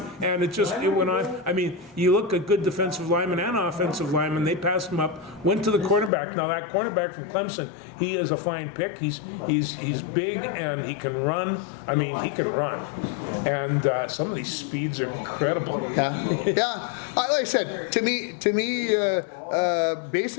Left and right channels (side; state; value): right; drops out; at 6.1 s